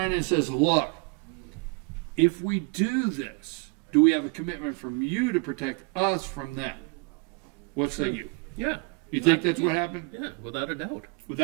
and says, look, if we do this, do we have a commitment from you to protect us from them? What say you? Yeah. You think that's what happened? Yeah, without a doubt.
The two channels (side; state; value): left; quieter; 32.7 dB